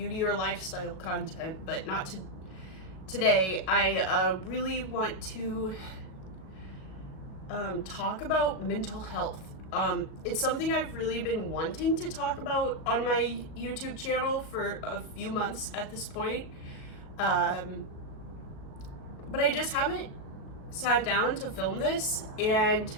or lifestyle content, but not today. I really want to talk about mental health. It's something I've really been wanting to talk about on my YouTube channel for a few months at this point. But I just haven't sat down to film this, and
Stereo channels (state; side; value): late; right; 37 ms